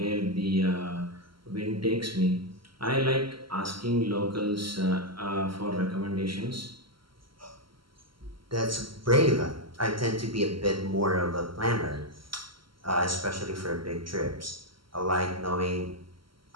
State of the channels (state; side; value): late; left; 0.74 ms